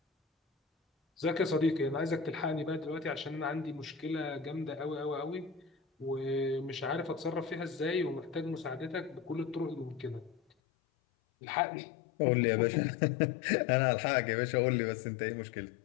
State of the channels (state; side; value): drops out; right; at 10.4 s